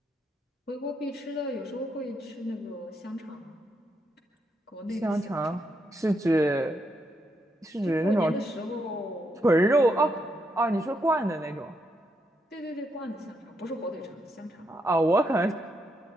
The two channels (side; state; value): both; normal; correlation 0.79